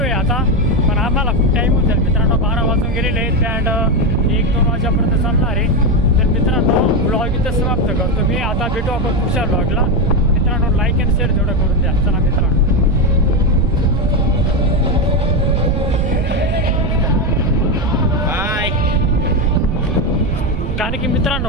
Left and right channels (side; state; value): right; noise; rumble, 3 dB below the sound